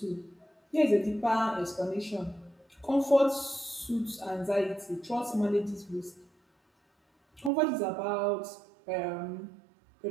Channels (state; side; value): drops out; left; at 7.5 s